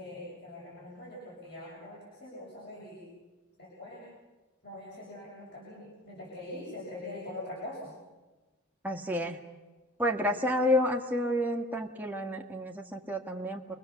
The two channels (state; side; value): normal; both; correlation 0.45